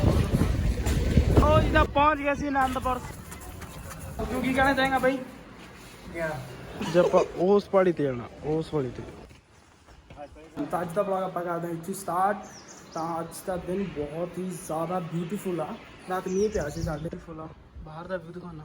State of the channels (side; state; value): both; identical; correlation 1.00